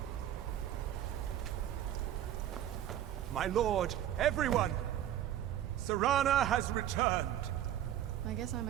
My lord, everyone! Serana has returned! I guess I'm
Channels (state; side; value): quieter; left; 11.5 dB